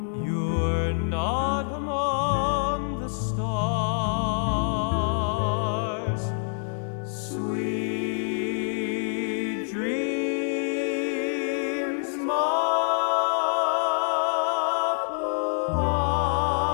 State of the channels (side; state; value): right; silent; 61 dB below the other